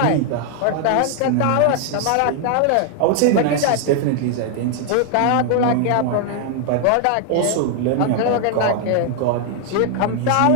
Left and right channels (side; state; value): both; different; correlation 0.00